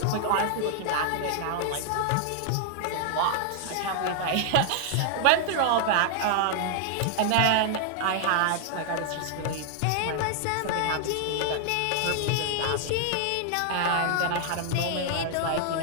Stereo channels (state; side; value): different; both; correlation 0.00